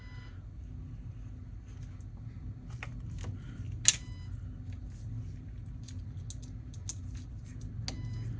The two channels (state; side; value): identical; both; correlation 1.00